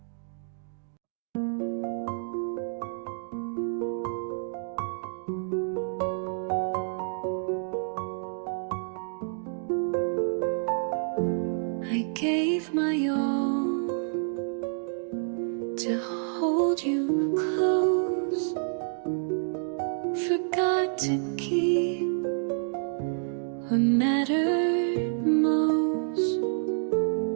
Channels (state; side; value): silent; left; digital silence